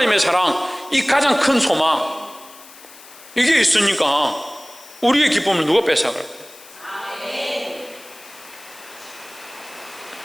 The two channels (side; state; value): left; noise; hiss, 20 dB below the sound